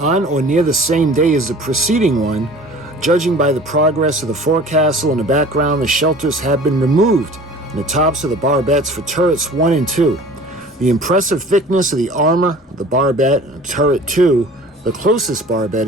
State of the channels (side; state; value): both; normal; correlation 0.44